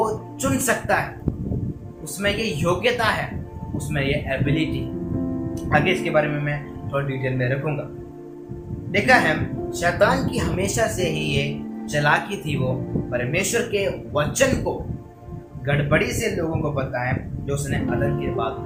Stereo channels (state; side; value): identical; both; correlation 1.00